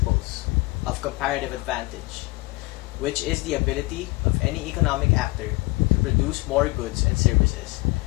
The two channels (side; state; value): right; quieter; 23.7 dB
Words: of comparative advantage, which is the ability of any economic actor to produce more goods and services